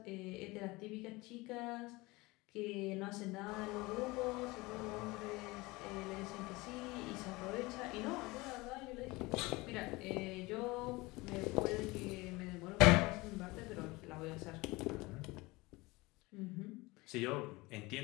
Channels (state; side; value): quieter; right; 22.5 dB